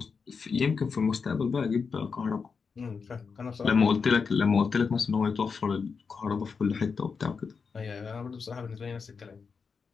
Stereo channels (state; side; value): quieter; right; 5.4 dB